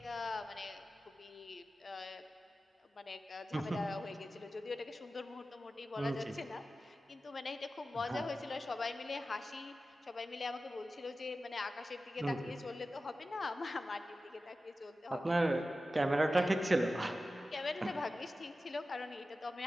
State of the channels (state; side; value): normal; both; correlation 0.94